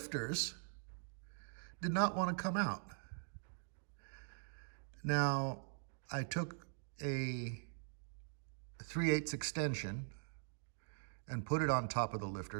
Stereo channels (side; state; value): left; silent; digital silence